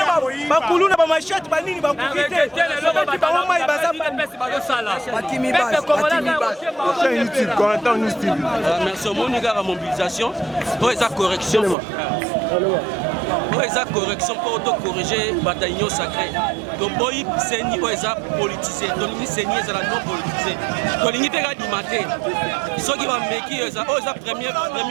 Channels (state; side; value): drops out; left; at 11.8 s